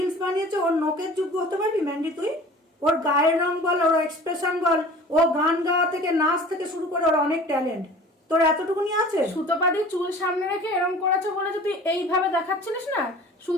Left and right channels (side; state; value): both; normal; correlation 0.44